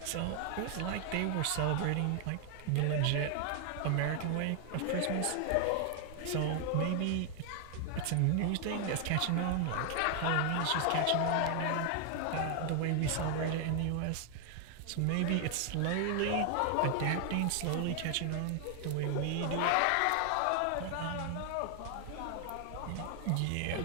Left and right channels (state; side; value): different; both; correlation 0.00